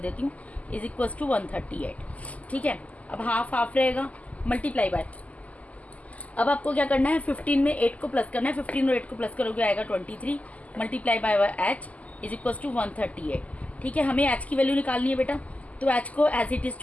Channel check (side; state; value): right; late; 0.073 ms